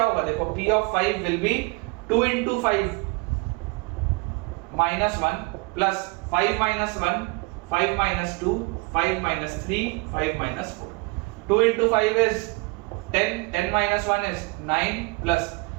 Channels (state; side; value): quieter; left; 28.3 dB